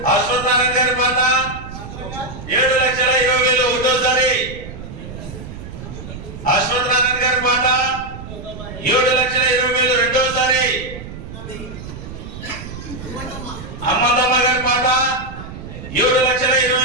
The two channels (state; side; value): noise; right; rumble, 11 dB below the sound